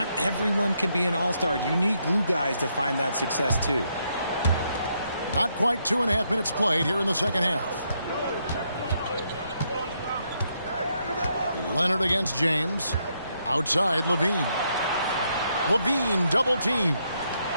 everyone can be an all-star. You need glue guys to find that success too. Not quite 2.5 minutes played here in the second half. Leonard against James. Outside, Levine. Levine double team.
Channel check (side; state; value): both; inverted; correlation -0.77